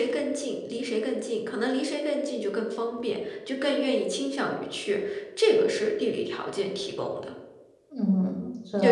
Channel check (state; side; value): identical; both; correlation 1.00